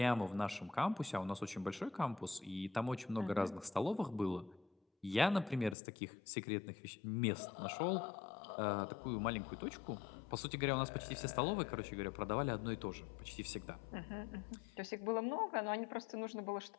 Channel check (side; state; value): right; drops out; at 5.8 s